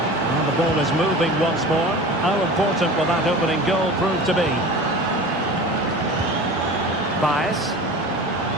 And the ball is moving once more. How important will that opening goal prove to be? Baez.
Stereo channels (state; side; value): normal; both; correlation 0.36